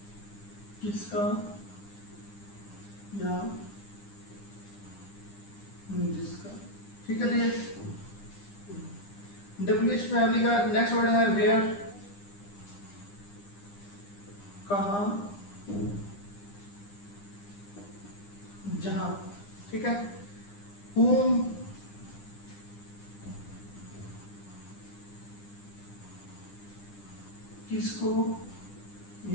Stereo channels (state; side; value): late; right; 9.9 ms